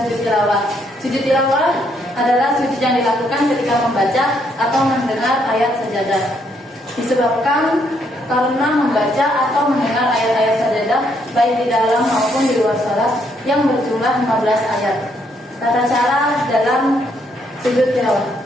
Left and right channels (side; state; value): both; normal; correlation 0.72